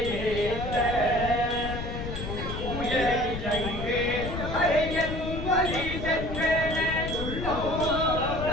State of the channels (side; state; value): left; noise; rumble, 5 dB below the sound